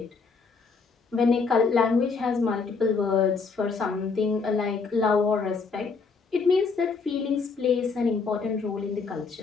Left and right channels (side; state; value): right; quieter; 4.8 dB